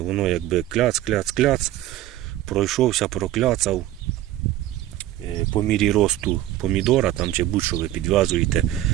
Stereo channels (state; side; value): quieter; left; 14.1 dB